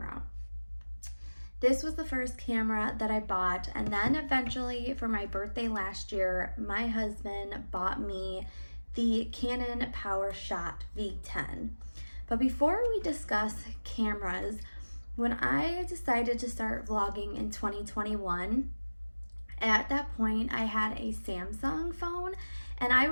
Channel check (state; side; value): inverted; both; correlation -1.00